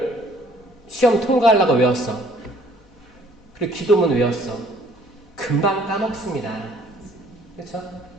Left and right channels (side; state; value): left; noise; hum, 29 dB below the sound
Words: 시험 통과하려고 외웠어. 그리고 기도문 외웠어. 금방 까먹습니다. 그렇죠?